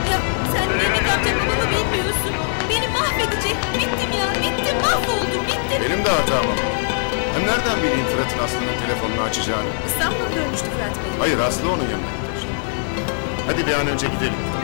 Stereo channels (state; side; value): silent; right; 65 dB below the other